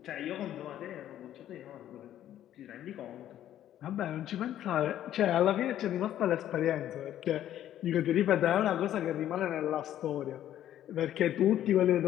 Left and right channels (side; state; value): right; quieter; 11.7 dB